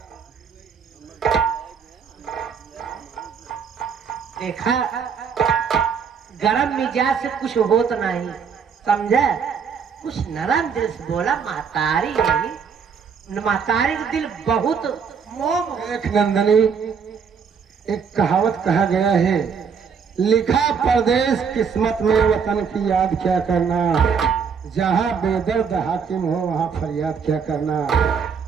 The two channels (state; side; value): quieter; left; 6.4 dB